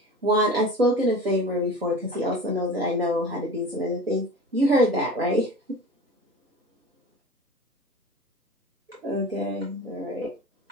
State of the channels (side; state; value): both; normal; correlation 0.36